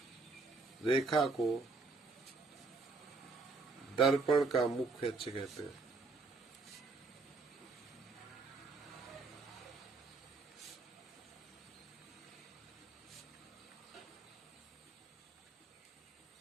को दर्पण का मुख्य अक्ष कहते हैं।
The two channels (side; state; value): left; quieter; 4.0 dB